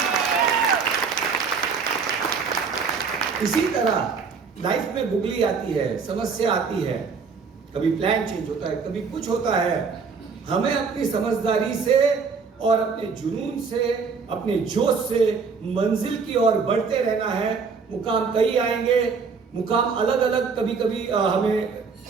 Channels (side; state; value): left; quieter; 5.3 dB